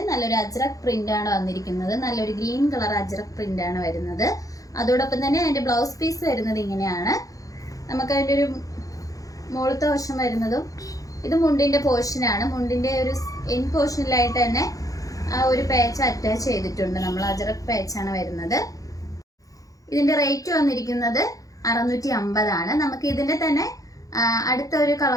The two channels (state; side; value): late; right; 0.17 ms